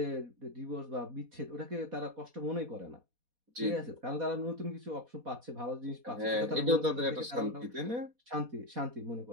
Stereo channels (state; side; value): late; left; 4.1 ms